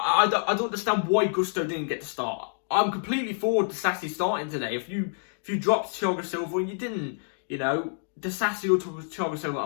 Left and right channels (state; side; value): silent; right; digital silence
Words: don't understand why Gusto didn't get to start. I'm completely forward to Sassy starting today. If you dropped Thiago Silva and you didn't, Disasi or Thiago Silva, I